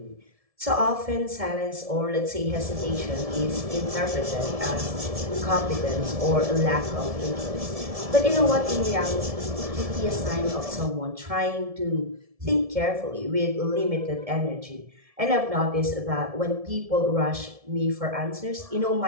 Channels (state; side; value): late; left; 1.7 ms